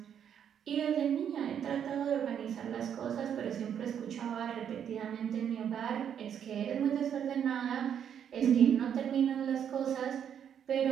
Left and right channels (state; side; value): quieter; left; 8.7 dB